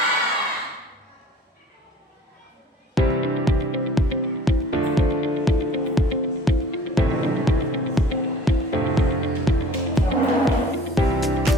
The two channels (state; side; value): normal; both; correlation 0.50